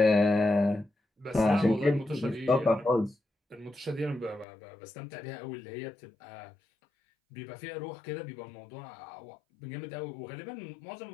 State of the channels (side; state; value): right; drops out; at 4.5 s